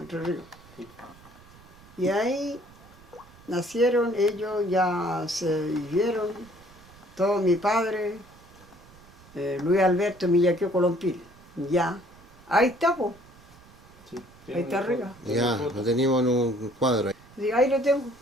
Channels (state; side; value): noise; right; rumble, 24 dB below the sound